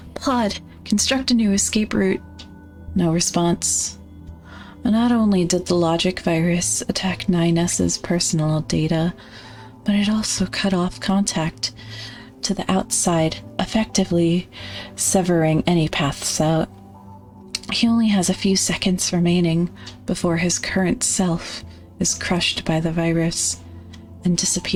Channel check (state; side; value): identical; both; correlation 1.00